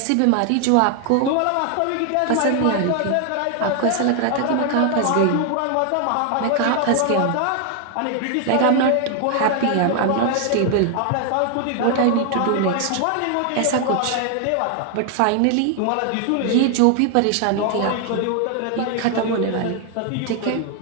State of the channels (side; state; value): both; different; correlation 0.00